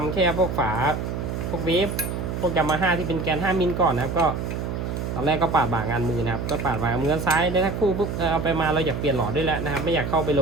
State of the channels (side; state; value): right; noise; hum, 4 dB below the sound